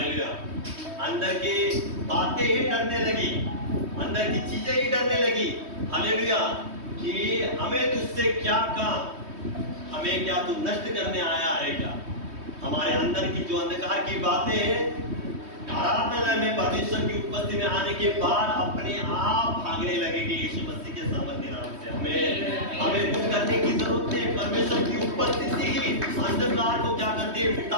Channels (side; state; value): left; late; 3.2 ms